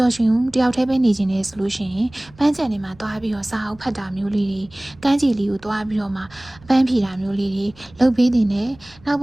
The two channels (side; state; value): right; noise; rumble, 25 dB below the sound